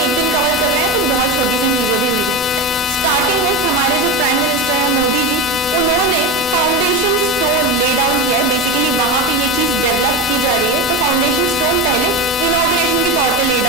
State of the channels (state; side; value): normal; both; correlation 0.21